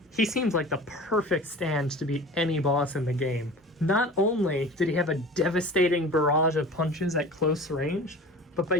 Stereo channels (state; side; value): normal; both; correlation 0.39